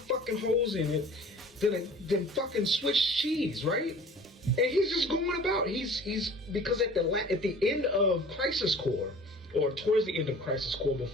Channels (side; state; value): both; normal; correlation 0.46